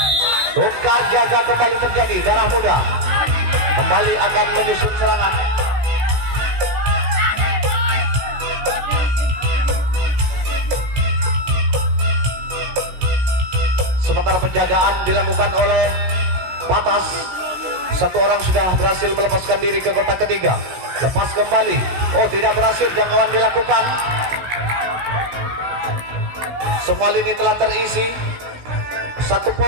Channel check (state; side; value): late; left; 16 ms